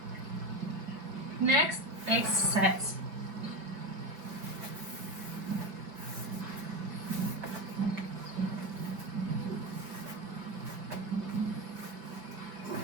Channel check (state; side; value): late; left; 5.1 ms